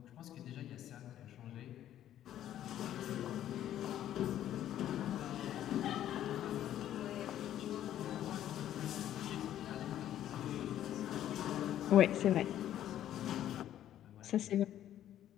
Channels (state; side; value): quieter; right; 11.7 dB